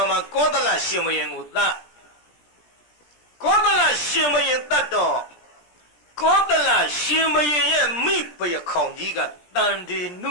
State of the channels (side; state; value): right; late; 17 ms